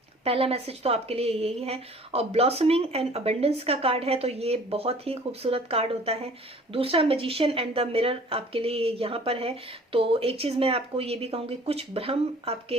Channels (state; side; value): normal; both; correlation 0.51